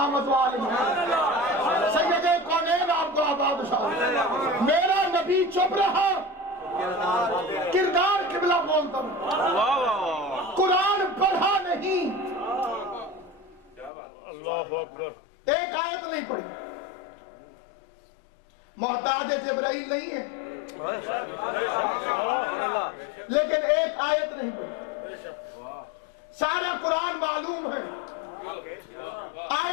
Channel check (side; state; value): right; drops out; at 13.9 s